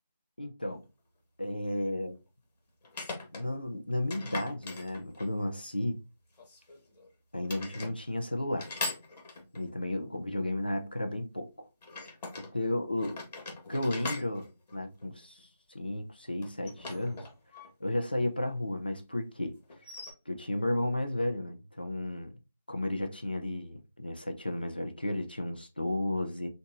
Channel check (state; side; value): inverted; both; correlation -0.92